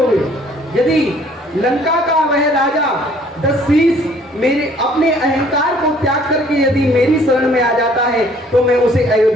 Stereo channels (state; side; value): normal; both; correlation 0.58